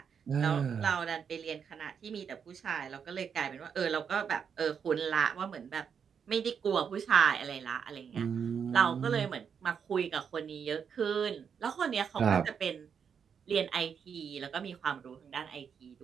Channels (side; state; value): left; quieter; 7.0 dB